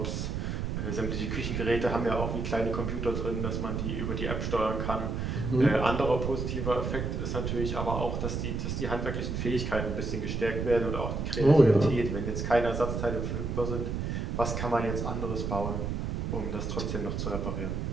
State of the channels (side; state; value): right; noise; rumble, 2 dB below the sound